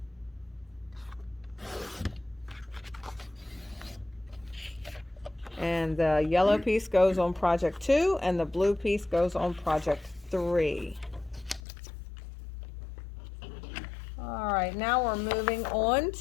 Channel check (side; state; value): right; drops out; at 11.6 s